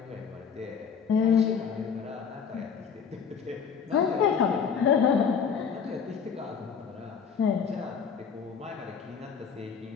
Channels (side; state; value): right; quieter; 6.5 dB